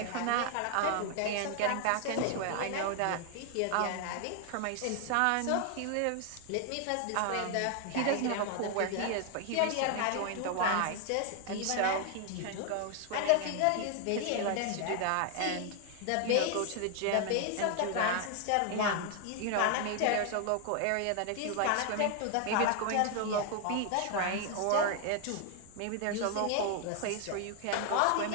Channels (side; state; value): both; different; correlation 0.00